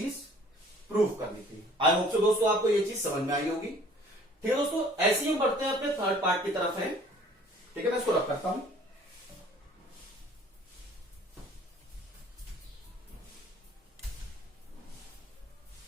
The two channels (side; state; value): both; normal; correlation 0.53